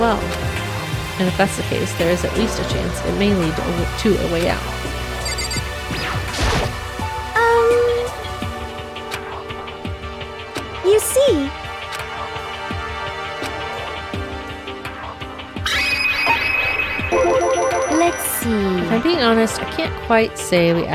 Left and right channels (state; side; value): identical; both; correlation 1.00